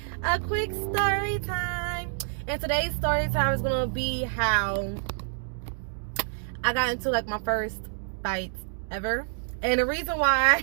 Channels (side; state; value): left; silent; digital silence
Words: And today's story time is gonna be how I got into like my first fight ever. And the reason